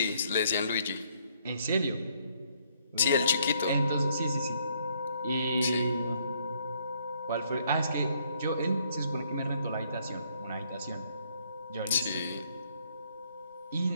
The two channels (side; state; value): both; inverted; correlation -0.68